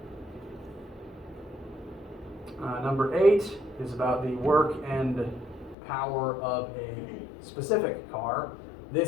Number 8 is about the work and power of a specific car.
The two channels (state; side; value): drops out; right; at 5.8 s